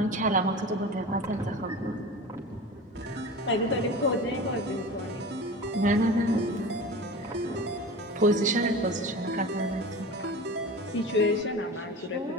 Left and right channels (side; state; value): both; normal; correlation 0.33